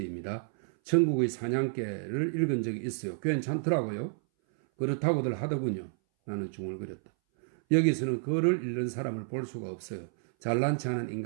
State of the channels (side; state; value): left; silent; 58 dB below the other